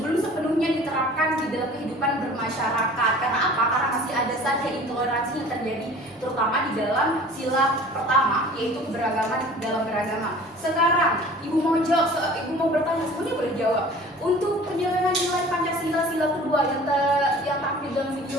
sepenuhnya diterapkan di dalam kehidupan bermasyarakat. Karena apa? Karena masih ada saja intoleransi yang terjadi, terutama di dalam sila pertama, yaitu keberagaman dalam beragama. Sekarang, Ibu mau jawab, Ibu mau bertanya, semuanya boleh jawab. Untuk penjelasan nilai Pancasila sila kedua yang tampil dalam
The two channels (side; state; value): both; normal; correlation 0.45